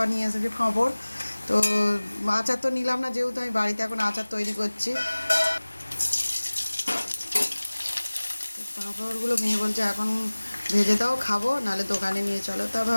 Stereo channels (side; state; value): both; inverted; correlation -1.00